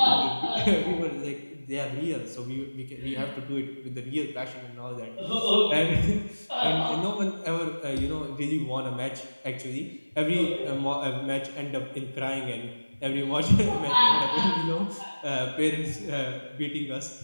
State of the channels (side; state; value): both; inverted; correlation -1.00